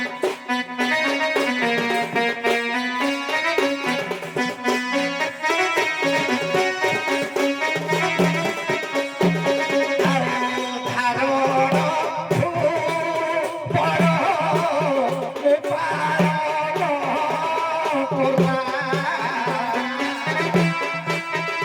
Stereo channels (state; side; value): identical; both; correlation 1.00